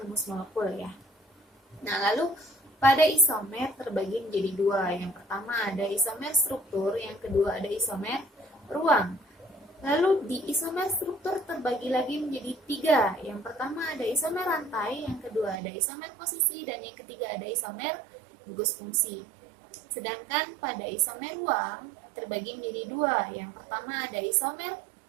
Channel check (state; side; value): drops out; left; at 15.6 s